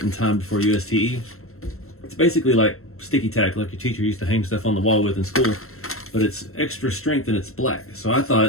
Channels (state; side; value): late; right; 0.63 ms